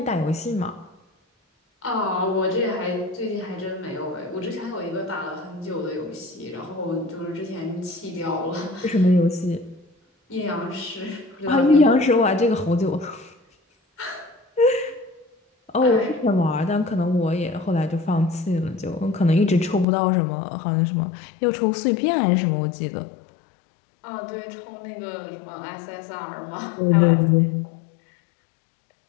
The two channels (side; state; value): right; drops out; at 19.9 s